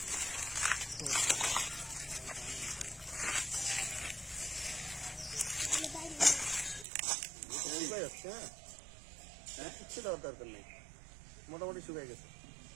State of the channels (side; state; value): left; drops out; at 6.9 s